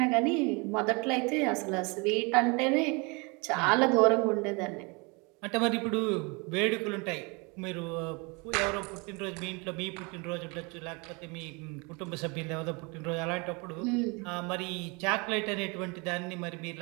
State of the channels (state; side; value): quieter; left; 29.7 dB